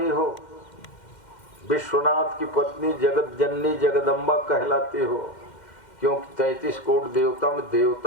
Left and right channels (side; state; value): right; late; 2.1 ms